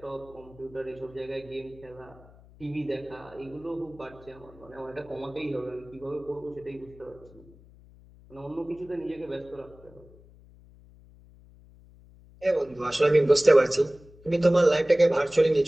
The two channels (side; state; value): left; noise; hum, 24 dB below the sound